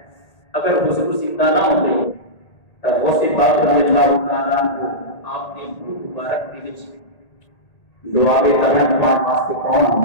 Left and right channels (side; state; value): right; late; 1.8 ms